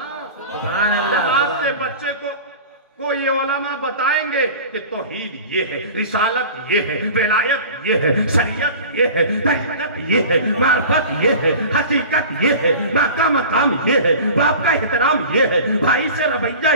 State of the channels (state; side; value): inverted; both; correlation -0.38